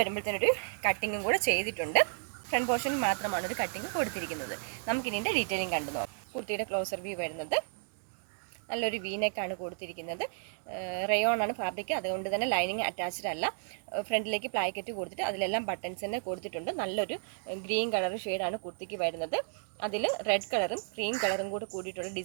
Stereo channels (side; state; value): left; silent; digital silence